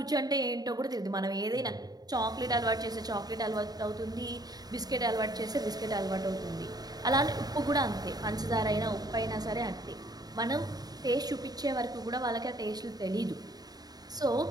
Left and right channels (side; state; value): left; late; 0.19 ms